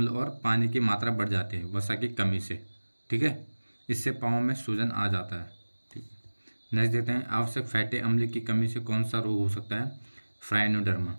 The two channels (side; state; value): both; inverted; correlation -1.00